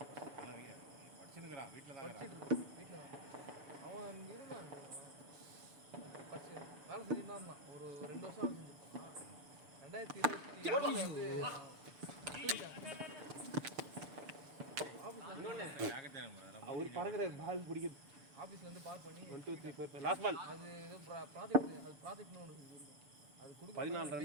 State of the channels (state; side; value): late; left; 6.8 ms